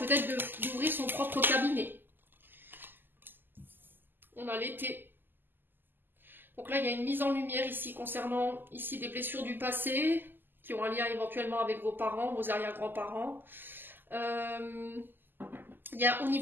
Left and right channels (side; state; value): left; late; 0.092 ms